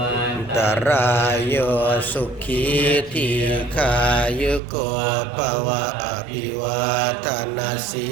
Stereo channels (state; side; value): drops out; left; at 4.6 s